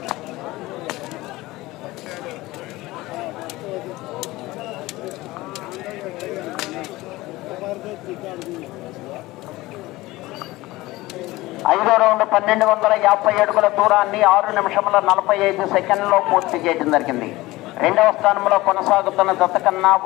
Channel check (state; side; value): quieter; right; 19.2 dB